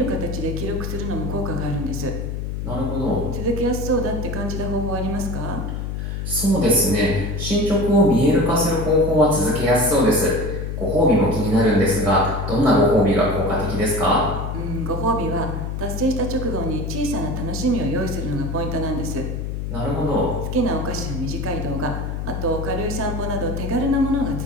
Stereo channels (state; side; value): noise; left; hum, 4 dB below the sound